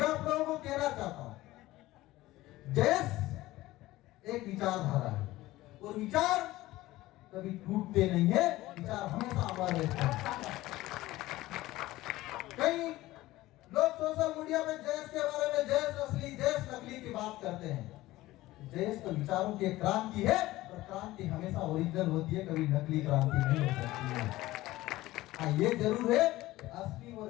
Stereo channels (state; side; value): quieter; right; 17.3 dB